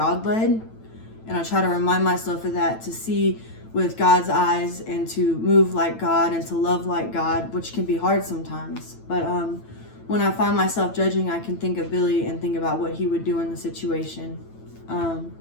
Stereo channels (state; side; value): late; right; 9.0 ms